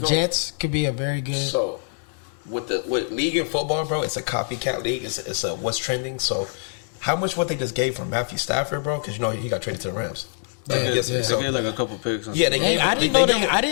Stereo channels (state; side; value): silent; right; 60 dB below the other